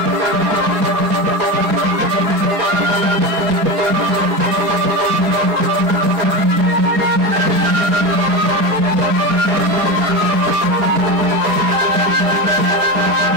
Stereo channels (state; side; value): late; left; 4.8 ms